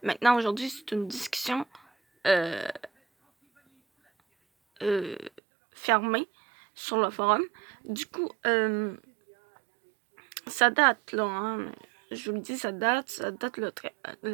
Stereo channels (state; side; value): drops out; left; at 5.4 s